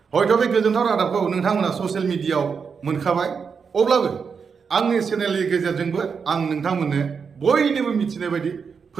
हयथ' बे गोजोनथाव रादाबखौ नोंथांमोना ससियेल मिडियायाव मोनखाबाय, अब्लाबो आंनि चेनेलनि गेजेरजोंबो आं नोंथांमोननो बयनिबो मिथिनाय बायदि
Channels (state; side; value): quieter; left; 5.9 dB